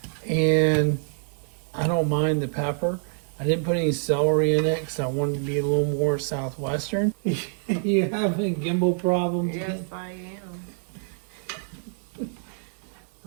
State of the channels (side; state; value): left; silent; 61 dB below the other